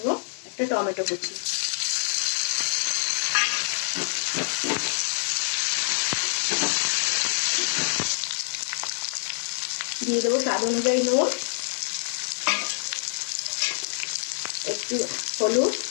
একটা টমেটো কুচি। দিয়ে দেবো স্বাদ অনুযায়ী নুন, একটু হলুদ,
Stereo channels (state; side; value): silent; right; 57 dB below the other